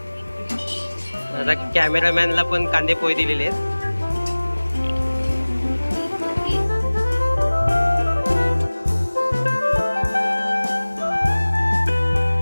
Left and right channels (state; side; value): inverted; both; correlation -1.00